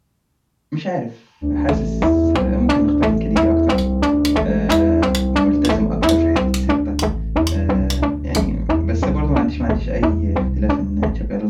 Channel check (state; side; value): identical; both; correlation 1.00